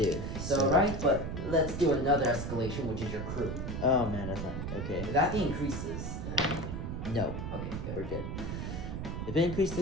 So right, but let's do another escalation, which is your crew. Oh man, that's not okay. If that increases, then no. Okay, good. We're good. If it increased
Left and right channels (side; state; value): right; noise; rumble, 4 dB below the sound